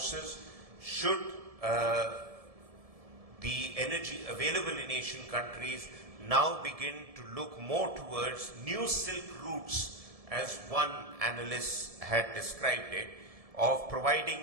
Should the energy available in Asian countries now begin to look more towards new silk routes, as one analyst had described it, of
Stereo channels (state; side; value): late; left; 1.7 ms